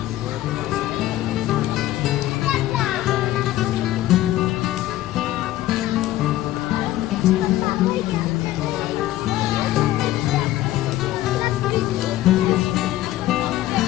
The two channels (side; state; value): right; quieter; 14.8 dB